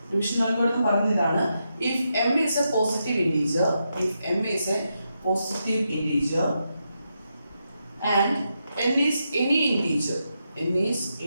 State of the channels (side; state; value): both; inverted; correlation -0.84